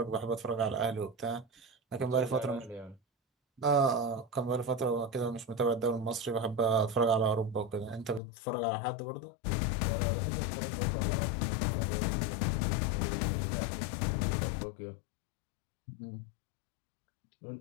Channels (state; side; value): drops out; right; at 8.2 s